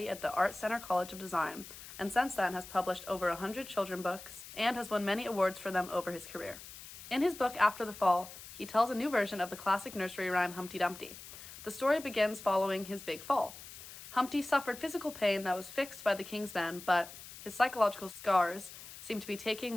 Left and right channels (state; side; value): noise; left; hiss, 14 dB below the sound